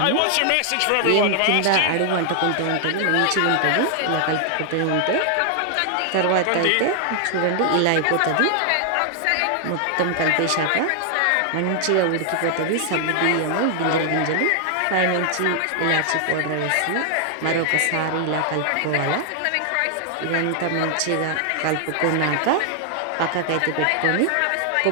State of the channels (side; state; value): both; different; correlation 0.00